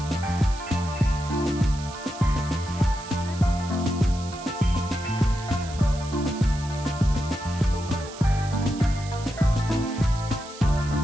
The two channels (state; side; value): noise; right; hiss, 16 dB below the sound